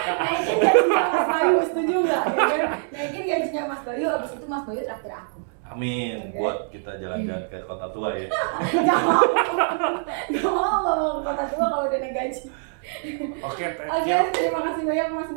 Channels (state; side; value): silent; left; 62 dB below the other